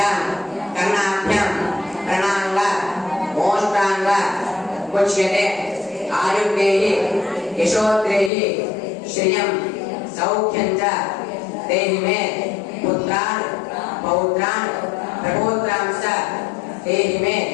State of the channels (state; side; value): drops out; right; at 8.3 s